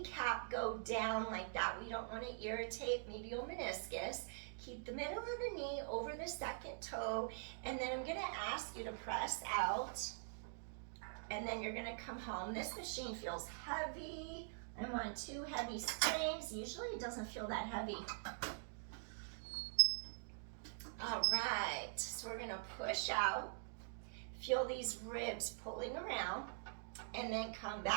go down like that. We don't want to irritate medial meniscus. Keep the middle of the knee over the second toe, and then I'm going to ask you to press out, and then you're going to come home. This machine feels heavy. I'm on 2 heavy springs. Usually it doesn't feel that heavy. All right, so we're going to push out. Feel these ribs pulling around, and then come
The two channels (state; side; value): silent; left; digital silence